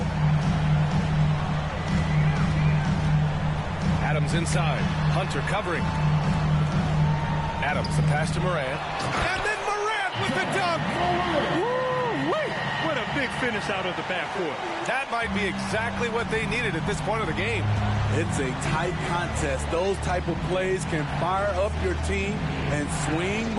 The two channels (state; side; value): identical; both; correlation 1.00